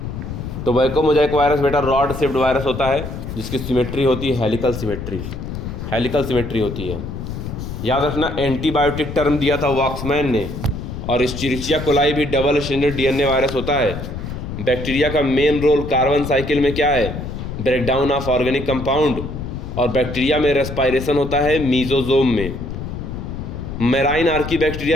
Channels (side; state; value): left; noise; rumble, 7 dB below the sound